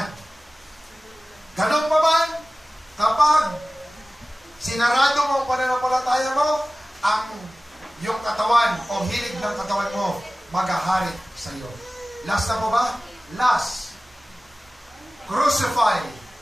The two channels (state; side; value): normal; both; correlation 0.97